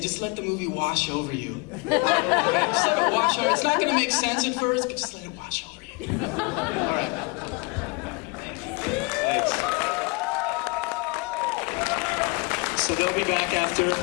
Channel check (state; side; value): quieter; right; 29.3 dB